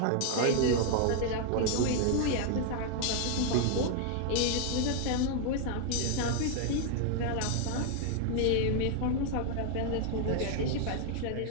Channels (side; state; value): both; different; correlation 0.00